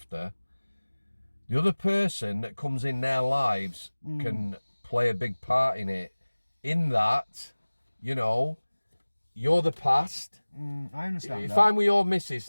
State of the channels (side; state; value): both; inverted; correlation -1.00